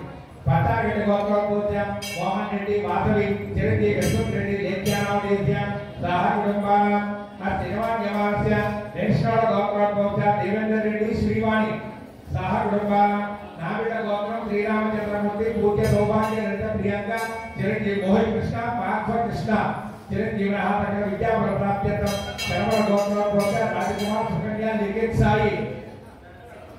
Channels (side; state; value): both; identical; correlation 1.00